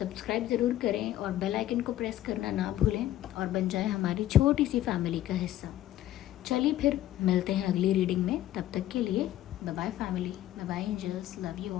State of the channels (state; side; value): quieter; right; 13.5 dB